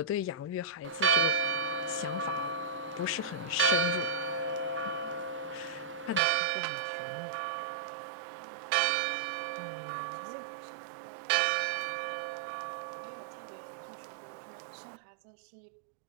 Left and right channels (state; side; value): drops out; left; at 6.2 s